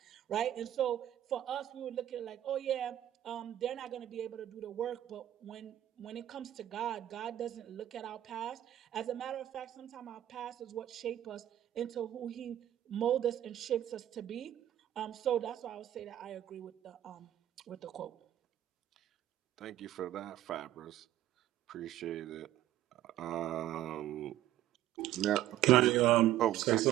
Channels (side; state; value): left; quieter; 12.8 dB